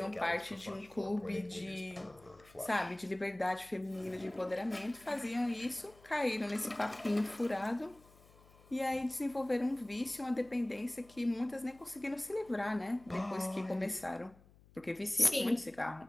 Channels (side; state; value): left; noise; hum, 26 dB below the sound